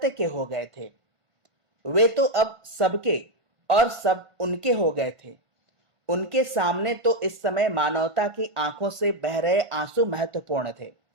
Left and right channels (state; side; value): late; left; 1.5 ms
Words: के हो गए थे। वे तो अब सबके और सब उनके हो गए थे। उनके सामने तो इस समय मानवता की आंखों से बह रहे आंसू महत्वपूर्ण थे।